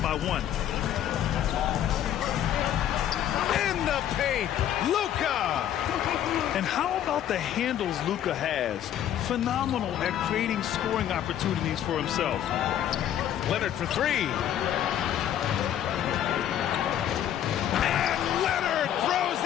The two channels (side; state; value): right; quieter; 10.8 dB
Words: by 1. In the paint, Luka! And how about the handles Luka has? Phenomenal at creating scoring opportunities for himself. Leonard for 3. And Leonard throws